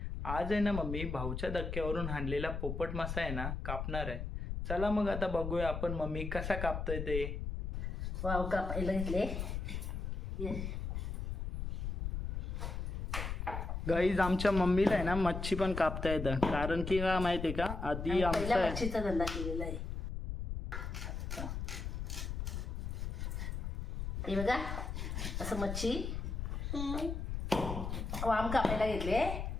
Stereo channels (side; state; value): left; noise; rumble, 3 dB below the sound